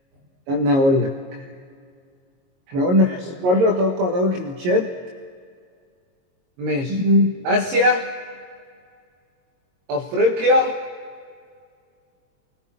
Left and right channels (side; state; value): left; late; 22 ms